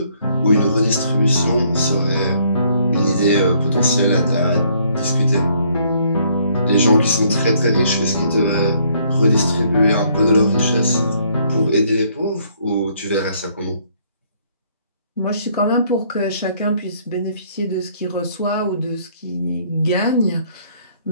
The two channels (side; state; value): both; inverted; correlation -0.66